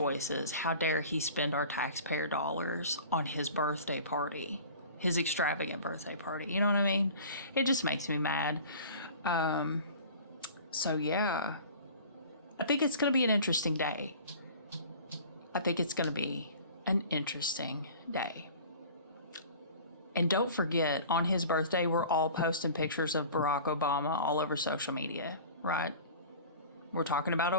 how dare he spend our taxpayer dollars on his birthday party, his extravagant birthday party? You know what I mean? It just makes me mad. So yeah, I think it's going to be an interesting day. I think it's going to be an interesting day. And don't forget, on his birthday, we're all posting pictures of Barack Obama all over social media, right? We're talking about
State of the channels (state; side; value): inverted; both; correlation -0.42